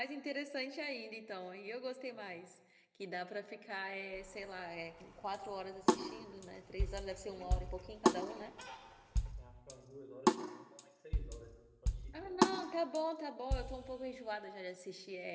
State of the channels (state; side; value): identical; both; correlation 1.00